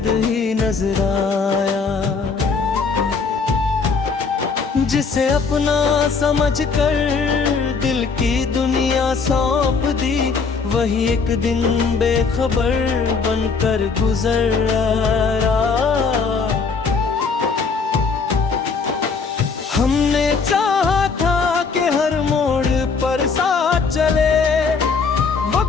ही नजर आया। जिसे अपना समझकर दिल की दुनिया सौंप दी, वही एक दिन बेखबर बनकर गुजर आया। हमने चाहा था कि हर मोड़ पर साथ चले,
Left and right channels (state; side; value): quieter; right; 5.0 dB